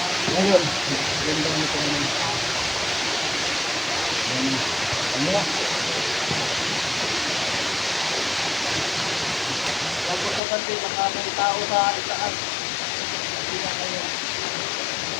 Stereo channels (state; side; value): drops out; right; at 10.4 s